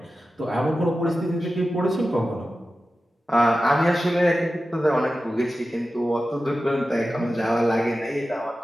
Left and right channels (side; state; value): both; normal; correlation 0.93